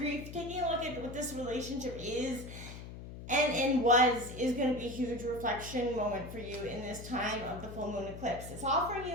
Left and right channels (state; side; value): noise; left; hum, 11 dB below the sound